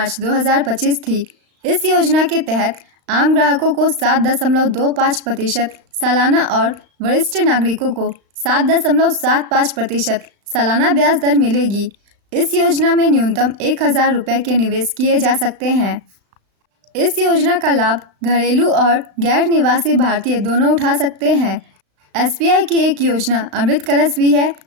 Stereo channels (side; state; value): left; late; 35 ms